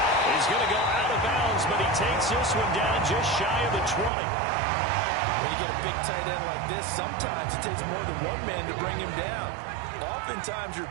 going to go out of bounds, but he takes this one down just shy of the 20. When you get a big tight end like this, sometimes it takes more than one man to bring him down. Oftentimes, your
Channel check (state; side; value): drops out; left; at 4.1 s